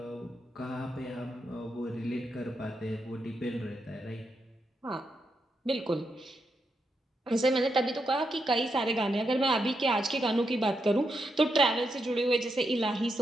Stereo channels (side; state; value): both; normal; correlation 0.83